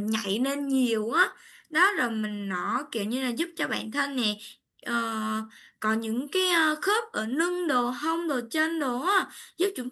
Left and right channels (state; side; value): identical; both; correlation 1.00